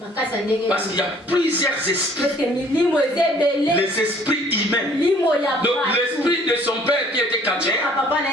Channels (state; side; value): normal; both; correlation 0.57